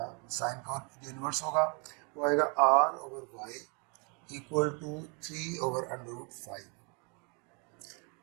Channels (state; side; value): quieter; left; 34.4 dB